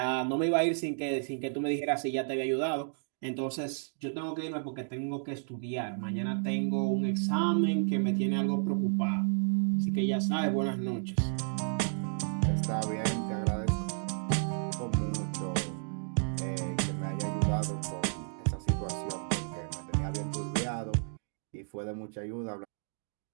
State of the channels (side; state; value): left; silent; digital silence